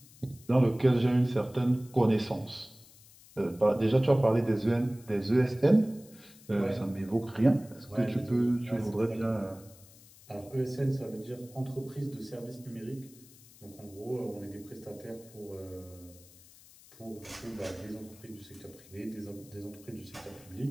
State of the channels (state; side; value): noise; left; hiss, 23 dB below the sound